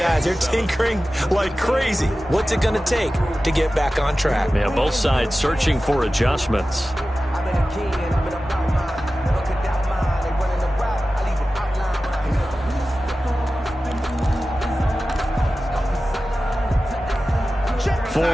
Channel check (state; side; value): normal; both; correlation 0.95